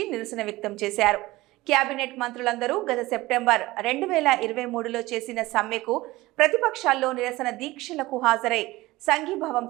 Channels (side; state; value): left; quieter; 19.2 dB